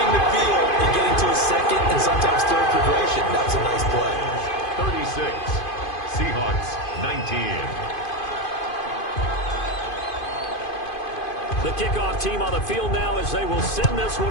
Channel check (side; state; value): right; late; 2.5 ms